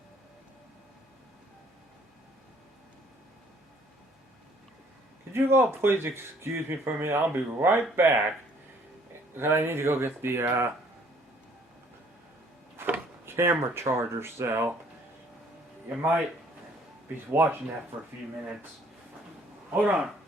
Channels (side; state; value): both; normal; correlation 0.60